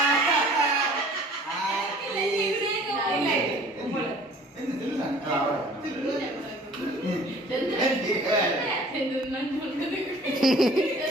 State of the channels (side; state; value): both; normal; correlation 0.50